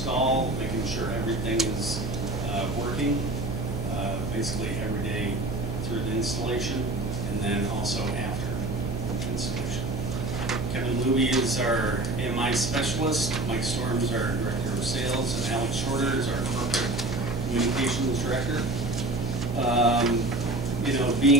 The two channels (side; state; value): right; noise; hum, 4 dB below the sound